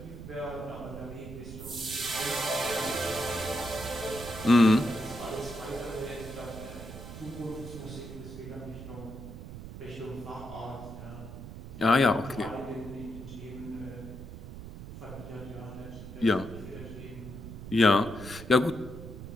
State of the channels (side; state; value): right; noise; rumble, 11 dB below the sound